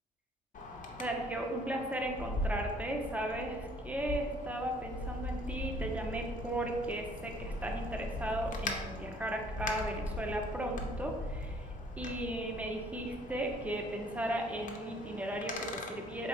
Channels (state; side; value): normal; both; correlation 0.59